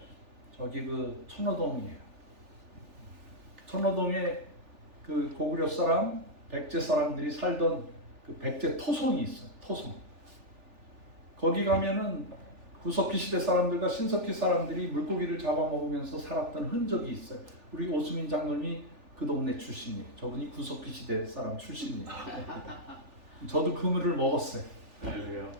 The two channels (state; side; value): late; left; 3.4 ms